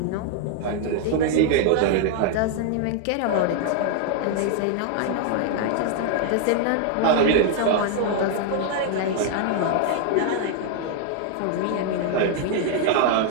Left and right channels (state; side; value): different; both; correlation 0.00